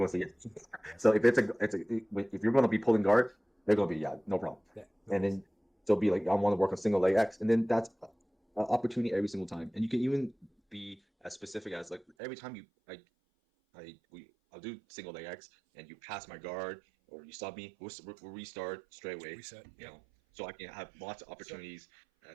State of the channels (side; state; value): left; drops out; at 12.1 s